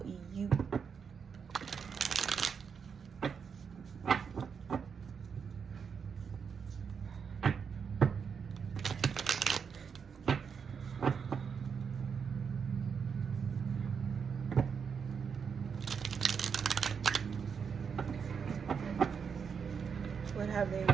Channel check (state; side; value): quieter; left; 6.4 dB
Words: you? What have they